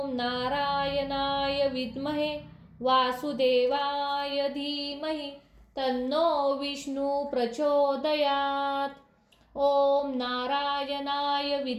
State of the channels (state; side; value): identical; both; correlation 1.00